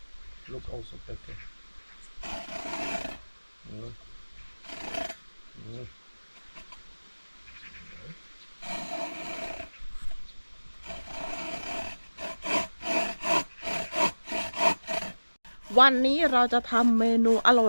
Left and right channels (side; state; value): both; inverted; correlation -1.00